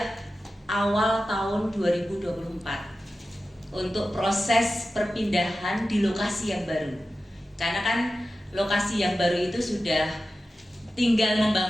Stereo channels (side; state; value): both; normal; correlation 0.94